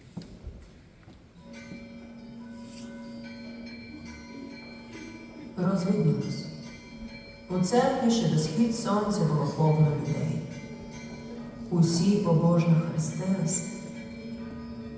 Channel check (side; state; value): both; identical; correlation 1.00